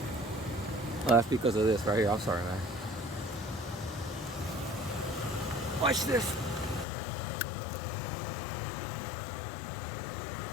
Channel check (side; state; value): right; drops out; at 6.9 s